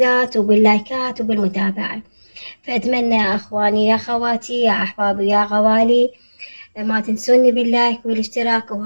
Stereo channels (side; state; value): both; inverted; correlation -1.00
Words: وباللايكات وبالمتابعة. فأتمنى يا أخواني يا خواتي يا أحبابي يا غوالي ما تنسوني باللايك والاشتراك.